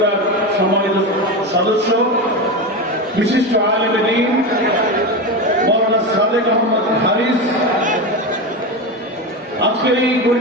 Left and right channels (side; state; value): both; normal; correlation 0.19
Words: সম্মানিত সদস্য, বিশিষ্ট আলেমে দ্বীন মাওলানা সাদেক আহমদ হারিস, আজকের এই